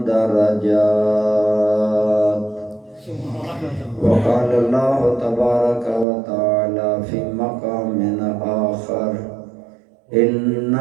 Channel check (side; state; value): left; drops out; at 6.1 s